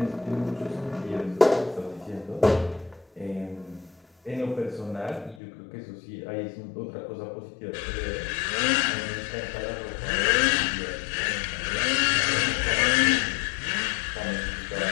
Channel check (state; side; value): drops out; right; at 5.4 s